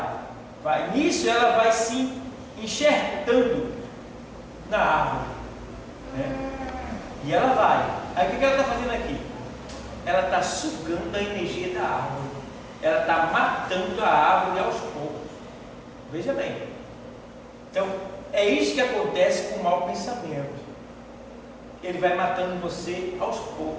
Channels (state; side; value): identical; both; correlation 1.00